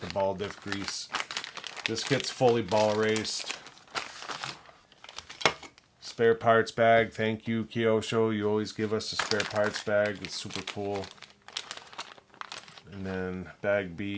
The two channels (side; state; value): both; identical; correlation 1.00